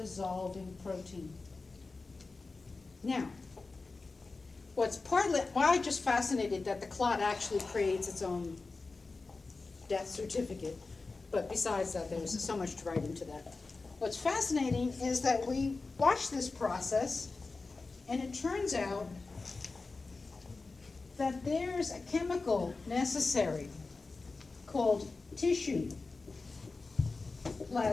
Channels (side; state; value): right; quieter; 3.8 dB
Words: protein. Now, why I'm just fascinated that the clot actually creates its own death certificate, but besides that, there's so much to write into that. What's fascinating is that we watch this process, and it turns out that there's a chemical necessary called tissue